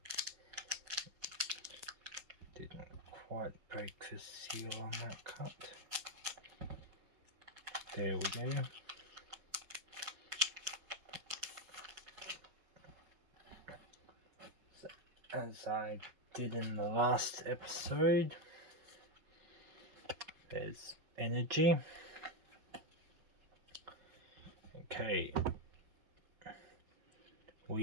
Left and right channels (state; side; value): late; left; 5.8 ms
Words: Didn't quite break the seal on that cut. There we go. So, as I did in the last episode, there's energy. Okay,